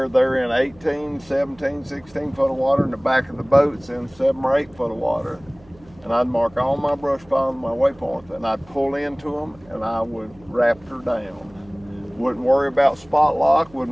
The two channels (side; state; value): right; noise; hum, 26 dB below the sound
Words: they're in 18, 17, 16 foot of water, and the back of the boat's in 7 or 8 foot of water. And I'd mark all my brush piles and my waypoints, and I'd pull into them, and I would raptor down. Wouldn't worry about spot lock,